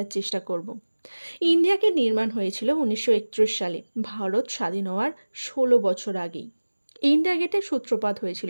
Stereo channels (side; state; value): both; inverted; correlation -1.00